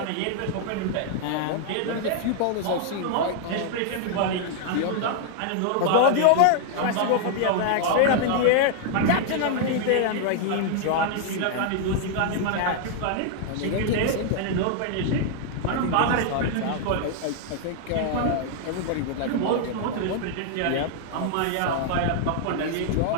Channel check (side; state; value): both; different; correlation 0.00